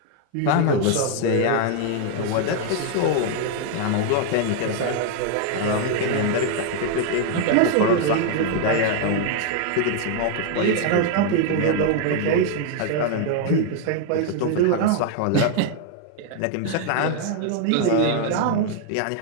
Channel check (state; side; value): different; both; correlation 0.00